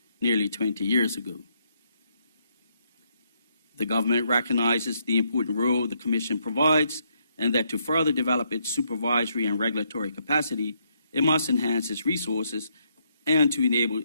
nearly 20 years ago. The government recognizes the important role the Commission provides and that to further develop its supervisory and regulatory capacity, it must enhance its resources and to enable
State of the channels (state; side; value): inverted; both; correlation -0.75